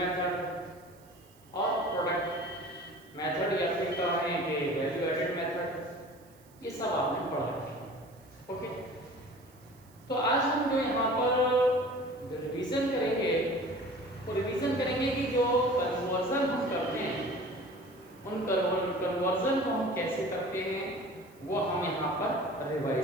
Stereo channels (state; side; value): noise; right; hiss, 29 dB below the sound